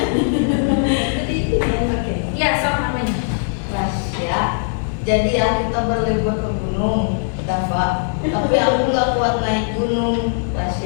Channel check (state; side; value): silent; right; digital silence